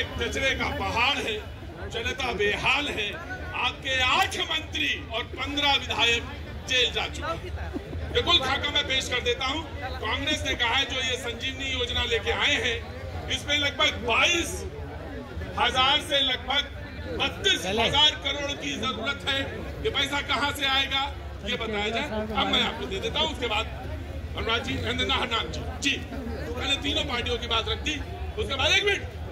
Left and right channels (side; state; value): both; identical; correlation 1.00